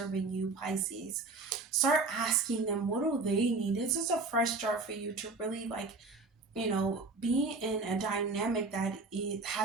you, Pisces? Start asking them, what do they need? This is a fresh start for you to really be in a dynamic that it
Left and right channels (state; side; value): quieter; left; 3.7 dB